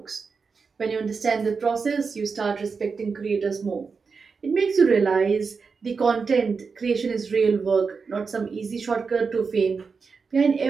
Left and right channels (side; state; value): left; quieter; 5.1 dB